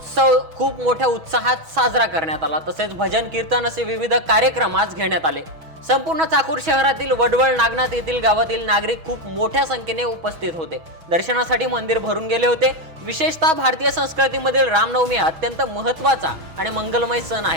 खूप मोठ्या उत्साहात साजरा करण्यात आला। तसेच भजन कीर्तन असे विविध कार्यक्रम आज घेण्यात आले। संपूर्ण चाकूर शहरातील वडवळ नागनाथ येथील गावातील नागरिक खूप मोठ्या संख्येने उपस्थित होते। दर्शनासाठी मंदिर भरून गेले होते। विशेषतः भारतीय संस्कृतीमधील रामनवमी अत्यंत महत्त्वाचा आणि मंगलमय सण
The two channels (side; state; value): left; late; 6.2 ms